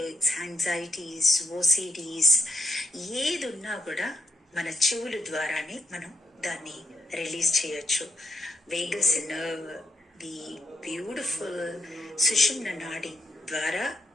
anxieties, OCDs ఏది ఉన్నా కూడా మన చెవుల ద్వారానే మనం దాన్ని రిలీజ్ చేయొచ్చు. వేగస్ నర్వ్, ది బ్యూటిఫుల్ సుషుమ్న నాడి ద్వారా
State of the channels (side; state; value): both; normal; correlation 0.80